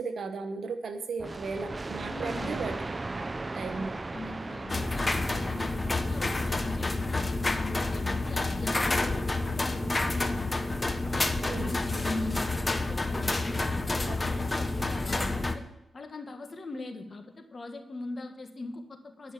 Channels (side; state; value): both; normal; correlation 0.94